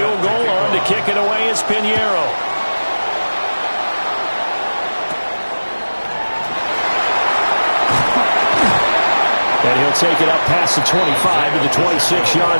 goal, on to kick it away is Pinheiro. And he'll take it up past the 25 to the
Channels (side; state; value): both; inverted; correlation -1.00